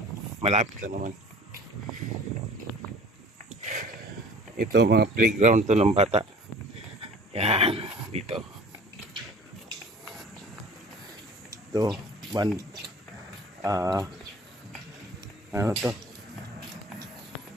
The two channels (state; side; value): normal; both; correlation 0.46